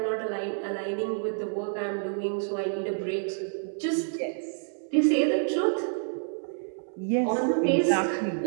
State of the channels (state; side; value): silent; left; 59 dB below the other